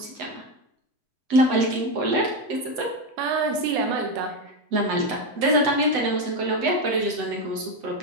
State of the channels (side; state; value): left; late; 8.0 ms